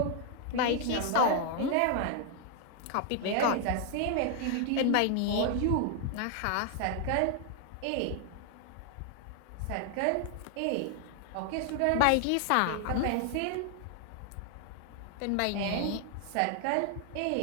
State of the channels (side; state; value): both; different; correlation 0.00